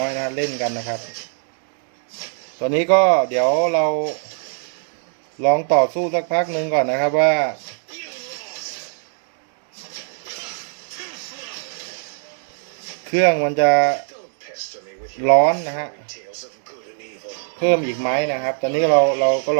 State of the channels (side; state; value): left; silent; digital silence